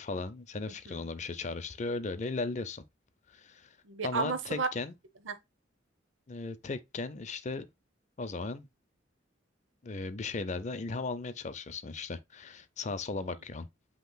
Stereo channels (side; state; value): both; normal; correlation 0.15